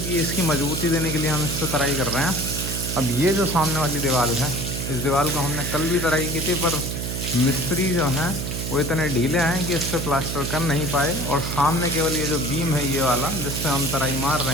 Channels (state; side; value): noise; right; hum, 4 dB below the sound